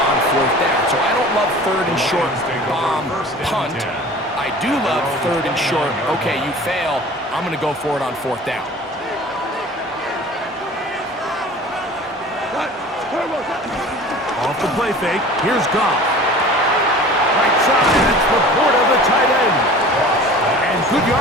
on 4th down. So I don't love 3rd and short bomb punt. I do love 3rd and short, okay, you fail, I'm going to go for it on 4th down. Off the play fake, here's Goff. Right side, it's Laporta, the tight end. And good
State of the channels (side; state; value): both; normal; correlation 0.42